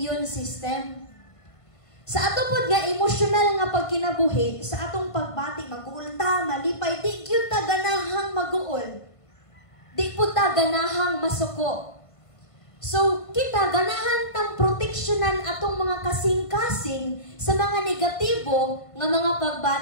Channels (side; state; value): right; late; 1.5 ms